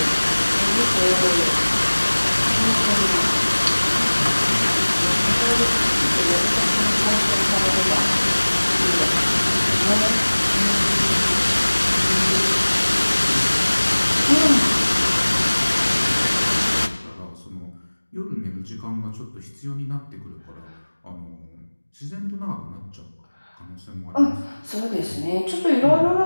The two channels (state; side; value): inverted; both; correlation -1.00